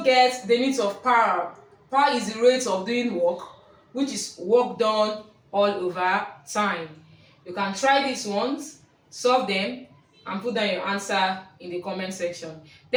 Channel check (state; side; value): identical; both; correlation 1.00